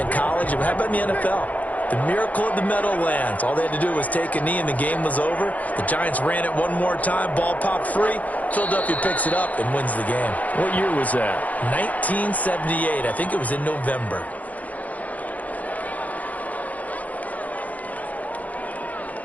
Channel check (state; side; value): late; right; 0.075 ms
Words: college. How about in the NFL? The miracle of the Meadowlands. All they had to do was take a knee and the game was over. The Giants ran it one more time. Ball popped free. Philadelphia picks it up and wins the game. What year was that? 1978. I think it was in November.